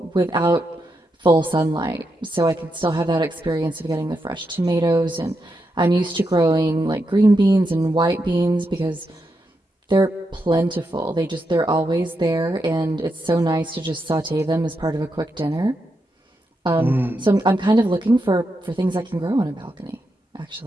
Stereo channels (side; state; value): both; normal; correlation 0.84